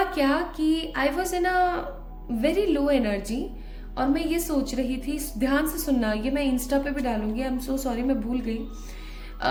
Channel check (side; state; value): both; identical; correlation 1.00